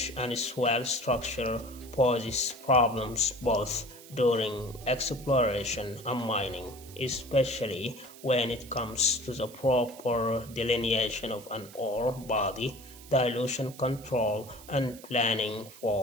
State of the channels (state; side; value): noise; right; hiss, 19 dB below the sound